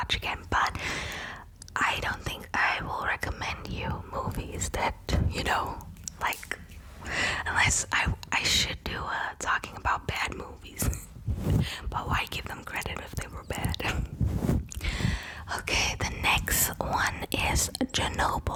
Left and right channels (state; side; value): identical; both; correlation 1.00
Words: again. But I don't think I will recommend you movies that, you know, like, unless I should do talking about bad movies. But why give them credit if they were bad? Okay, the next one is